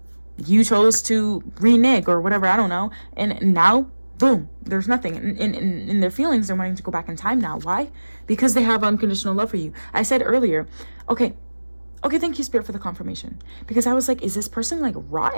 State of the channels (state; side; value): inverted; both; correlation -1.00